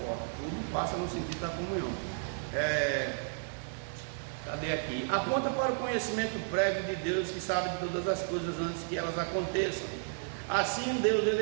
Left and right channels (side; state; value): left; silent; digital silence